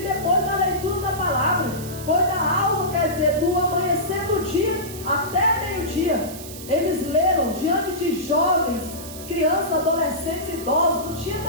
depois da leitura da palavra. Foi da alva, quer dizer, do amanhecer do dia até meio-dia. Eles leram diante de jovens, crianças, adolescentes, idosos. Não tinha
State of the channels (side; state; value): right; noise; hiss, 13 dB below the sound